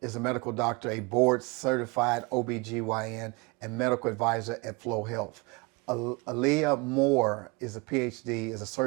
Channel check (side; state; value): left; quieter; 27.5 dB